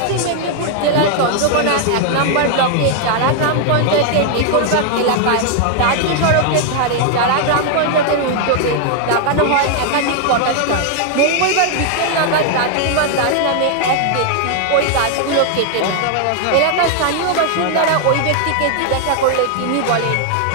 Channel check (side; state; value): both; different; correlation 0.00